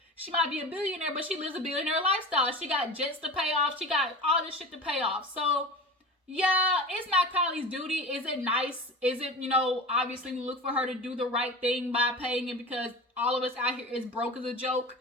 she might be a billionaire, but she lives a billionaire lifestyle. She got jets to pay off. She got all this shit to pay off. So, yeah, it's not Kylie's duty. Is it nice? Is it, obviously we look for her to do the right thing by paying it, because all of us out here is broke as a joke?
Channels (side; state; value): both; normal; correlation 0.33